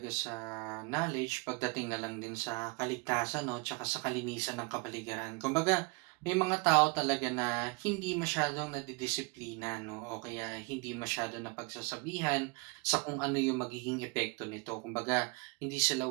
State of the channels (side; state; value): left; quieter; 29.1 dB